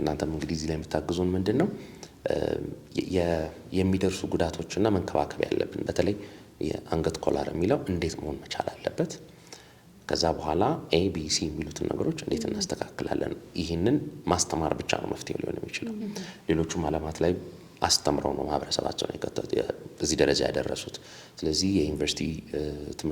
እንግዲህ እዚህ ላይ የምታግዙን ምንድን ነው የሚደርሱ ጉዳቶችና መንከባከብ ያለብን በተለይ የአንገት ኮላር የሚለው እንዴት መሆን መቻል አለበት። ከዛ በኋላ ኤቢሲ የሚሉትን ነገሮች እንዴት እናስተካክላለን። ይህንን ማስተማር ብቻ ነው መፍትሄው ሊሆን የሚችለው። ሌሎቹም ዓለማት ላይ አስተምረው ነው ማህበረሰባቸውን እዚህ ደረጃ ያደረሱት። ስለዚህ የዩኒቨርሲቲ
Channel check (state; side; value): identical; both; correlation 1.00